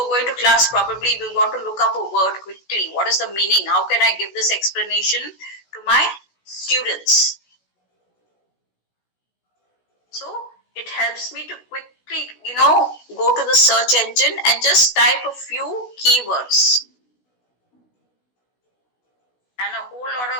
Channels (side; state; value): right; late; 16 ms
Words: going to class, probably we want to look up a word quickly. What is the meaning? How can I give this explanation to my students? So it helps me to quickly, go to the search engine and just type a few keywords. And a whole lot